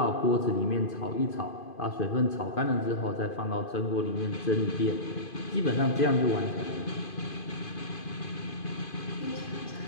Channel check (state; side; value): late; right; 2.5 ms